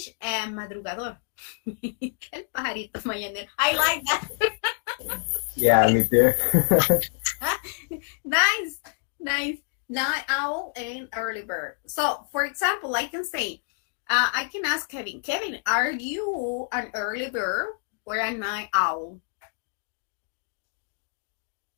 madrugador. El pajarito mañanero. I like that. Yeah, me too. Nice. Night owl and early bird. So, for example, I can say, I can ask Kevin, are you an early bird or a night owl?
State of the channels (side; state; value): right; silent; digital silence